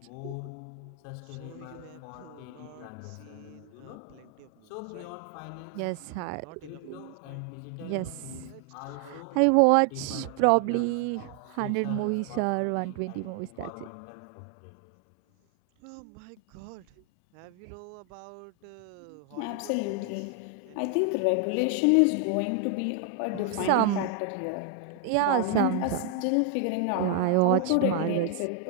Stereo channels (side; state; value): both; different; correlation 0.00